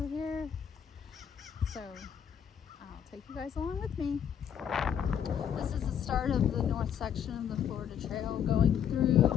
here. So I'll take you guys along with me. This is the start of the north section of the Florida Trail going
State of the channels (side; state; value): right; quieter; 8.6 dB